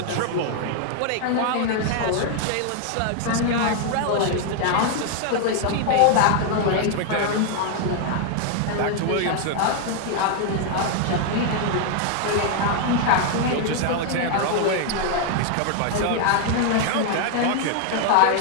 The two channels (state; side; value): different; both; correlation 0.00